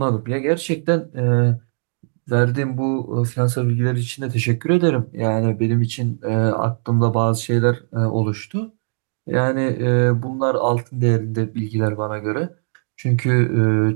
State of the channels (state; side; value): silent; left; digital silence